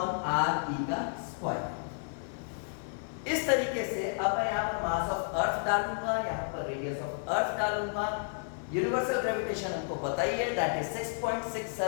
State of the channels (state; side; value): silent; right; 57 dB below the other